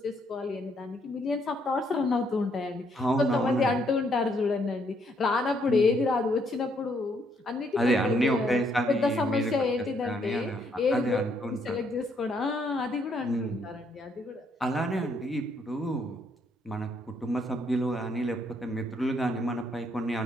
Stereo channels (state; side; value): normal; both; correlation 0.71